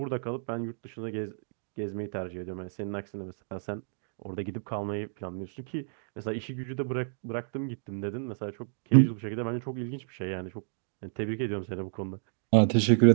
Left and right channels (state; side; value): silent; left; digital silence